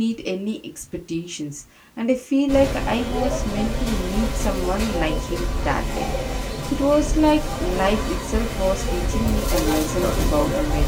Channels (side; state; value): both; identical; correlation 1.00